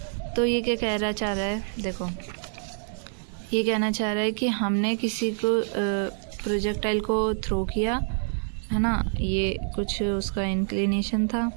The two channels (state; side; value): silent; left; digital silence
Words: तो ये क्या कहना चाह रहा है, देखो ये कहना चाह रहा है कि हमने किसी को प्रोजेक्टाइल को थ्रो किया है ना, ये कुछ उसका इंक्लिनेशन था,